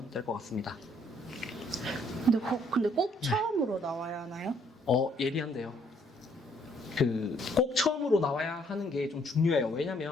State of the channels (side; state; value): both; normal; correlation 0.66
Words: 될 것 같습니다. 근데 꼭 처음으로 나와야 하나요? 예리한데요. 꼭 처음으로 나와야 하는 게 좀 중요해요.